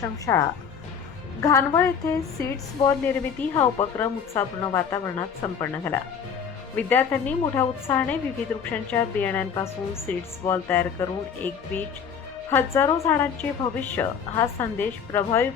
घानवळ येथे सीड्स बॉल निर्मिती हा उपक्रम उत्साहपूर्ण वातावरणात संपन्न झाला। विद्यार्थ्यांनी मोठ्या उत्साहाने विविध वृक्षांच्या बियाण्यांपासून सीड्स बॉल तयार करून एक बीज हजारो झाडांचे भविष्य हा संदेश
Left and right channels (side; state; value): right; quieter; 7.0 dB